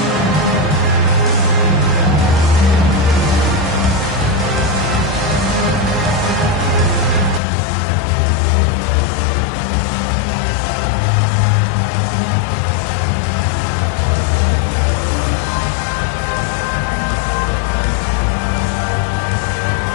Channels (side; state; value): right; drops out; at 7.4 s